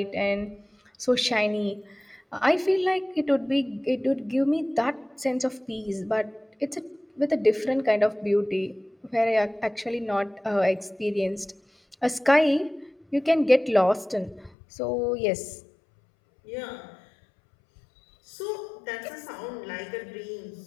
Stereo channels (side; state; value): right; drops out; at 14.5 s